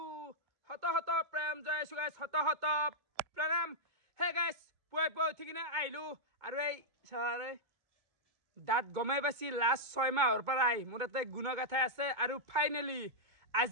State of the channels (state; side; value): late; left; 2.2 ms